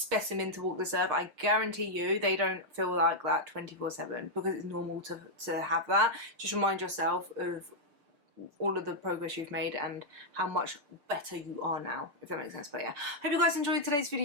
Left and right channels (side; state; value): left; late; 6.7 ms